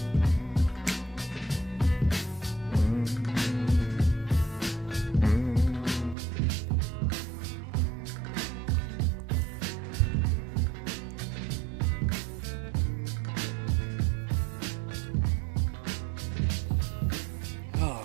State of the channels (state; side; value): drops out; left; at 6.2 s